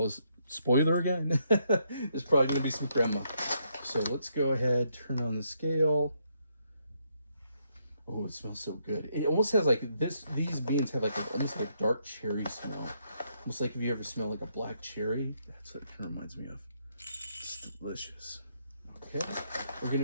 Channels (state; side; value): inverted; both; correlation -0.75